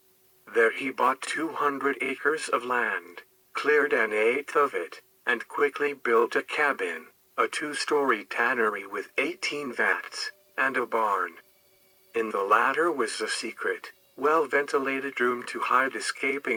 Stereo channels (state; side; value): identical; both; correlation 1.00